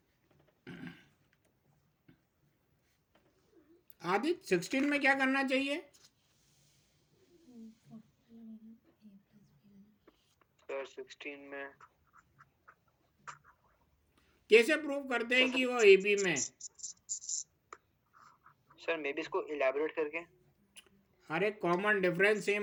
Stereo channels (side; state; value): both; identical; correlation 1.00